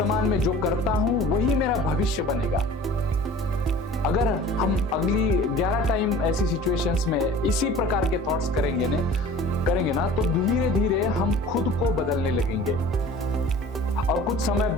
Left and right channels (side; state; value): both; normal; correlation 0.44